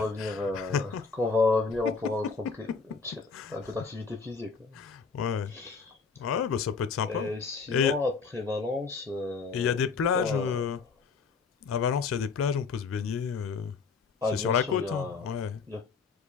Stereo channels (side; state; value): right; quieter; 5.1 dB